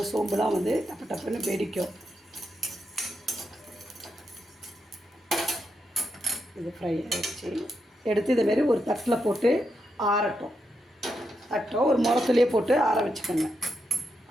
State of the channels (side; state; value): both; normal; correlation 0.83